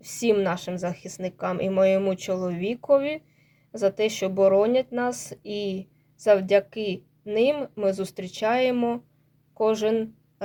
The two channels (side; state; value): both; identical; correlation 1.00